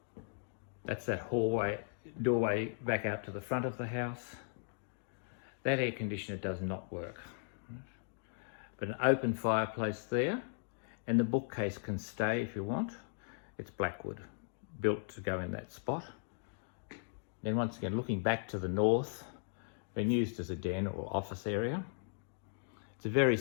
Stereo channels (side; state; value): right; silent; digital silence